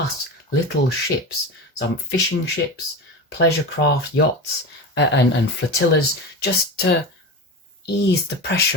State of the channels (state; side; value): normal; both; correlation 0.26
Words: little ships, some fishing ships, pleasure craft, yachts, and flotillas, just to ease the